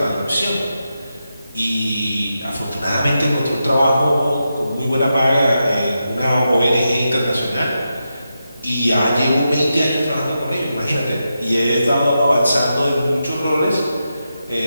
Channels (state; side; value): inverted; both; correlation -0.88